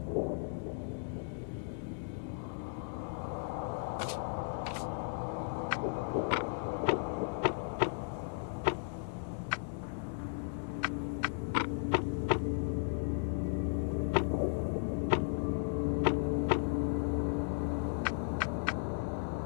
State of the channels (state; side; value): silent; right; digital silence